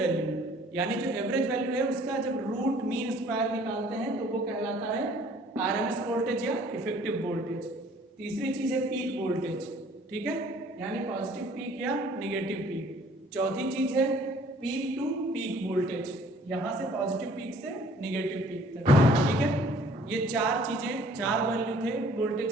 यानी जो average value है उसका जब रूट मीन स्क्वायर निकालते हैं तो वो कहलाता है RMS वोल्टेज या इफेक्टिव वोल्टेज। तीसरी चीज है पीक वोल्टेज, ठीक है। यानी पॉजिटिव पीक या नेगेटिव पीक। चौथी चीज है पीक टू पीक वोल्टेज, यहां से पॉजिटिव पीक से नेगेटिव पीक तक, ठीक है। ये चार चीजें, चार वैल्यू थे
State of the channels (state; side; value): normal; both; correlation 0.56